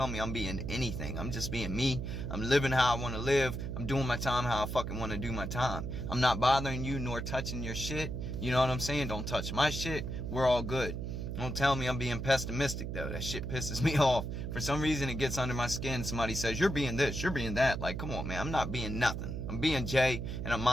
me I'm being anything. I'm just being me. I'm living how I want to live. I'm doing my time how I fucking want to do my time. I'm not bothering you nor touching your shit. You know what I'm saying? Don't touch my shit. We're all good. Don't tell me I'm being pessimistic, though. That shit pisses me off. For some reason, it gets under my skin. Somebody says, you're being this, you're being that. Like, come on, man. I'm not being nothing. I'm being Jay, and I'm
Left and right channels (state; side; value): noise; right; hum, 4 dB below the sound